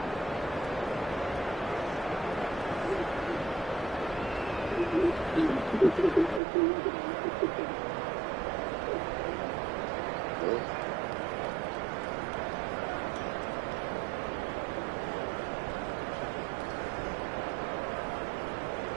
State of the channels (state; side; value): drops out; left; at 6.4 s